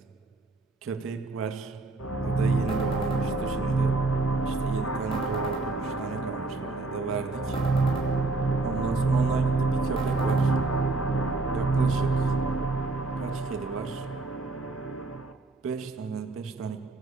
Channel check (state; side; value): quieter; left; 3.3 dB